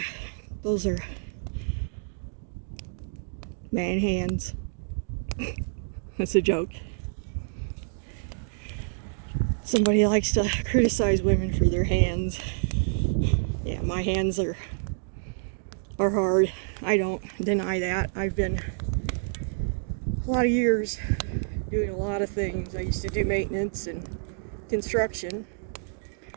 those are man hands. That's a joke. Somebody likes to criticize women for their hands. Yeah, my hands are hard. I don't deny that. I've been a lot of years doing a lot of things. I used to do maintenance and construction,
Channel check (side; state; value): left; silent; digital silence